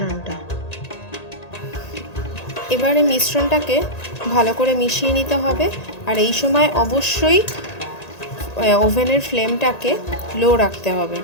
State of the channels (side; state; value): right; late; 1.9 ms